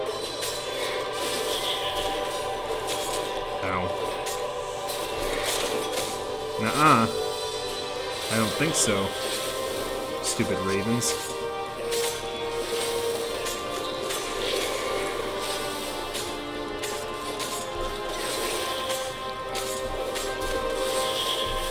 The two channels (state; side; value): identical; both; correlation 1.00